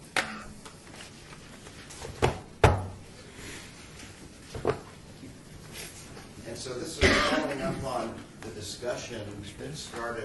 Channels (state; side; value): identical; both; correlation 1.00